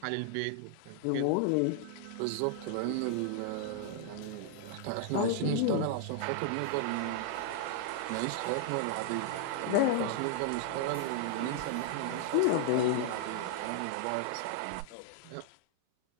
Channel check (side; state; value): both; different; correlation -0.01